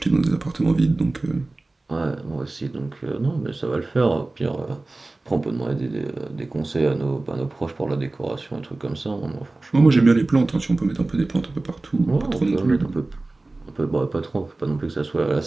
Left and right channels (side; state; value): left; quieter; 3.1 dB